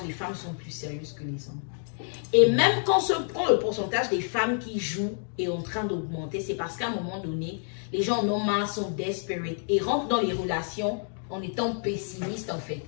les femmes sont plus sérieuses que les hommes. Et même quand le pourcentage des femmes qui jouent est en train d'augmenter, c'est parce qu'à un moment donné, les gens en ont marre, sont desperate et rentrent dans les relations en étant pessimistes en fait.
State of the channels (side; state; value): right; silent; 59 dB below the other